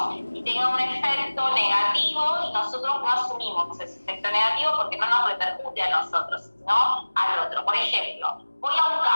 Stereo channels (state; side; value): inverted; both; correlation -1.00